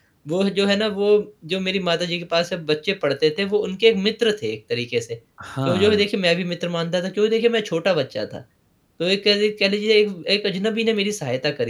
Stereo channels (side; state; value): both; identical; correlation 1.00